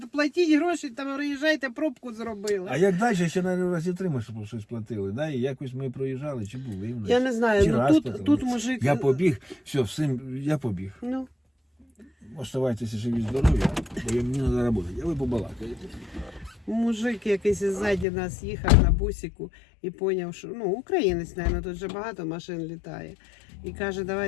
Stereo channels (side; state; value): right; drops out; at 18.1 s